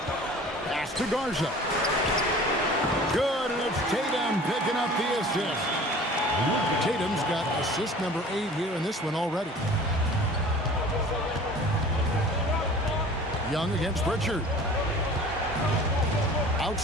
Pass to Garza. Good, and it's Tatum picking up the assist. Tatum's got assist number 8 here in this one already. Young against Pritchard.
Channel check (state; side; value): normal; both; correlation 0.44